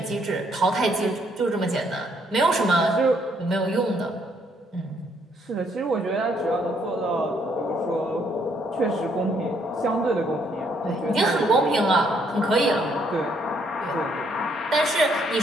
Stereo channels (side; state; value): both; normal; correlation 0.70